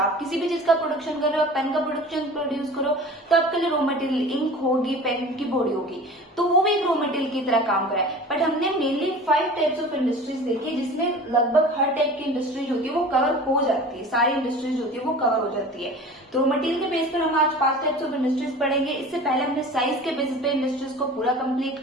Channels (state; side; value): normal; both; correlation 0.39